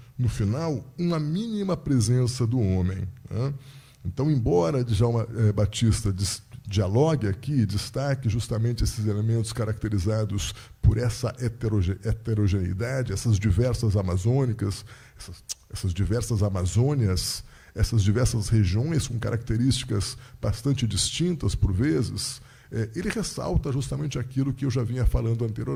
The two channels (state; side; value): identical; both; correlation 1.00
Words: no final, uma mínima presença do homem. Né? Então, embora Djalma Batista dialogue aqui, destaque justamente esses elementos caracterizados por essa heterogeneidade, essas diversas amazônicas, essas diversas Amazônias, essas diversas regiões com características bastante distintas, por vezes, ele ressalta justamente aquilo que eu já vinha falando